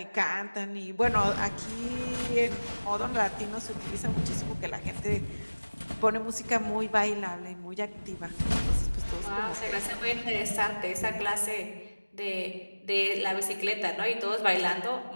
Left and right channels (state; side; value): inverted; both; correlation -1.00